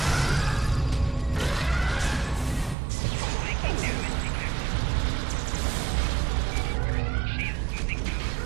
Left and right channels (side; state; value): left; drops out; at 2.8 s